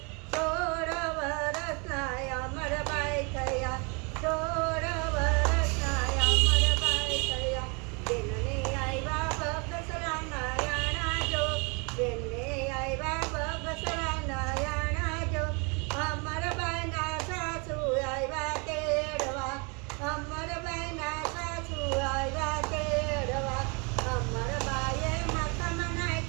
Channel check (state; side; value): quieter; left; 32.2 dB